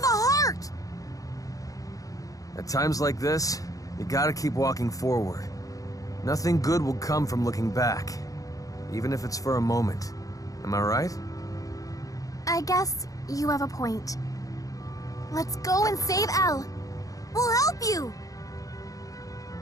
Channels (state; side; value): late; right; 0.17 ms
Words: a heart! At times like this, you gotta keep walking forward. Nothing good will come from looking back, even if it's for a moment. Am I right? I guess you have a point. Let's go and save Elle. We'll help you!